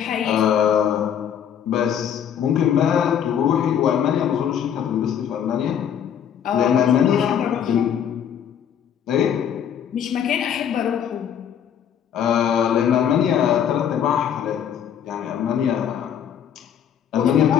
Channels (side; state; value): right; quieter; 8.9 dB